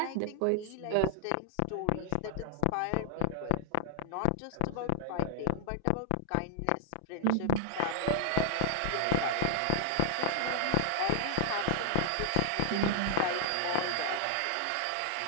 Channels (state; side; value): different; both; correlation -0.01